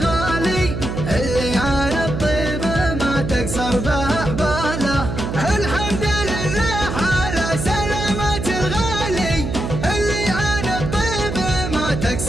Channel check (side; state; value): right; noise; hum, 4 dB below the sound